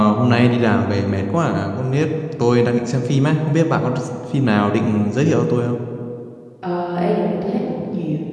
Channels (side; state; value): both; identical; correlation 1.00